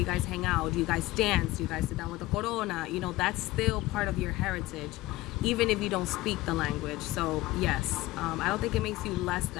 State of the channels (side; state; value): right; quieter; 18.2 dB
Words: guys hang out? Do you guys dance? Do you guys sit down with a corona? You know, that's still part of your heritage, even if you don't speak the language. So yes, I don't think it makes you less